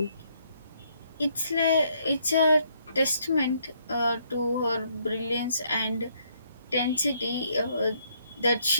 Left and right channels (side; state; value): both; inverted; correlation -0.70